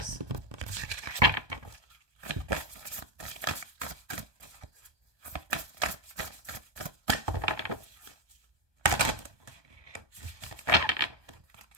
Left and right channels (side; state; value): left; late; 1.2 ms